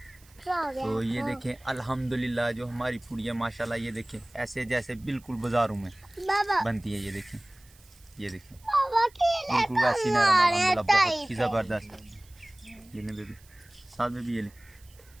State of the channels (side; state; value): right; noise; hiss, 27 dB below the sound